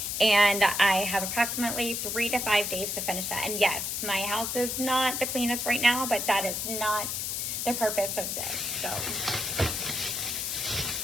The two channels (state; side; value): noise; left; hiss, 2 dB below the sound